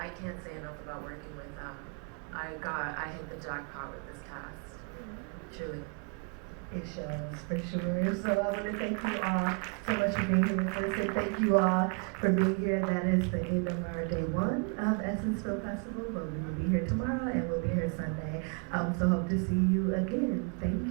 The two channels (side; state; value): left; quieter; 35.9 dB